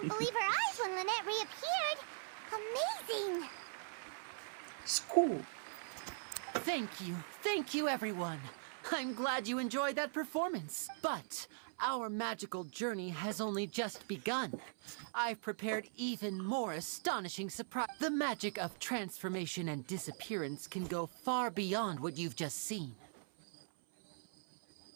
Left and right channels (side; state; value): left; silent; 51 dB below the other